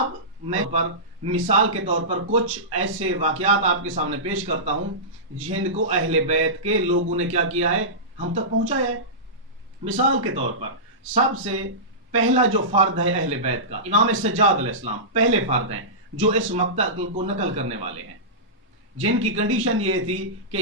میں مثال کے طور پر کچھ ایسے واقعات آپ کے سامنے پیش کرتا ہوں جن کو اہل بیت کے لوگوں نے کیا کیا ہے، ہم تک پہنچایا ہے۔ مثال کے طور پر سب سے پہلا جو فرد ہے اہل بیت کا، امام سجاد علیہ السلام پہلے فرد ہیں جو اس مقتل کو نقل کرنے والے ہیں، جن کی کنڈیشن یہ تھی کہ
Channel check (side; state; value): both; normal; correlation -0.18